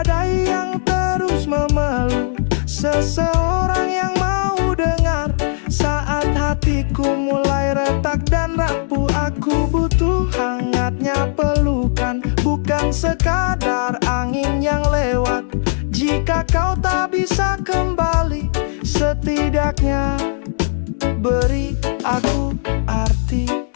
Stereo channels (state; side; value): silent; right; 67 dB below the other